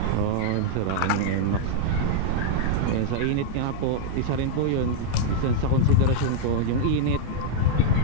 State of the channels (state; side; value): different; both; correlation -0.01